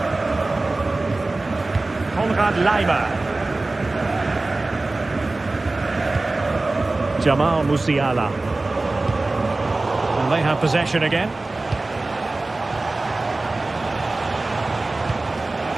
Konrad Laimer. Jamal Musiala. And they have possession again.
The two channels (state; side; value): quieter; left; 3.2 dB